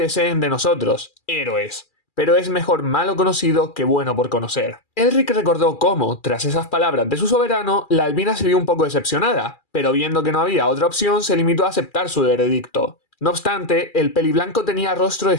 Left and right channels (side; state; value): right; late; 2.4 ms